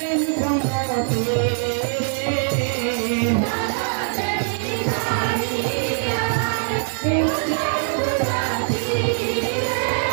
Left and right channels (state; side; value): silent; left; 64 dB below the other